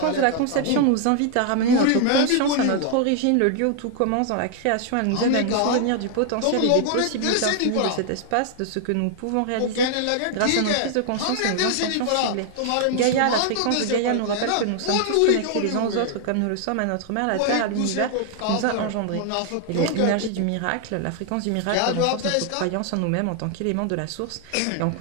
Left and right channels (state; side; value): different; both; correlation 0.00